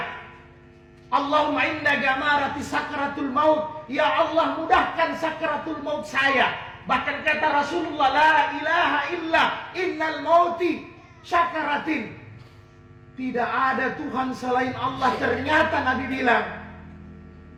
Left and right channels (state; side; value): identical; both; correlation 1.00